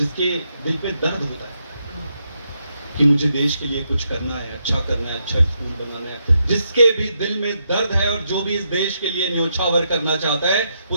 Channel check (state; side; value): inverted; both; correlation -0.80